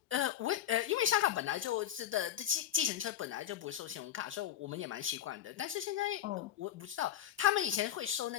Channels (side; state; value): right; quieter; 11.0 dB